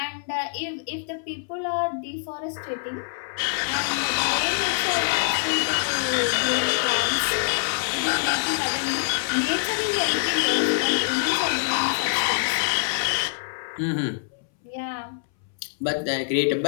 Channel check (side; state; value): right; silent; 62 dB below the other